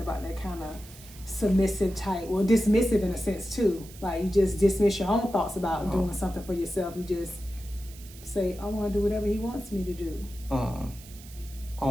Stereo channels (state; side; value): noise; right; hiss, 19 dB below the sound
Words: that kind of submissive type, well, dismissive in a sense too? Like you just dismiss your own thoughts about doing something for yourself. You just say, I want to do whatever he wants me to do.